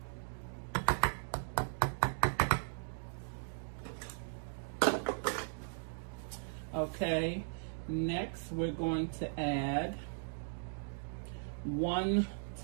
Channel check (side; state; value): left; silent; digital silence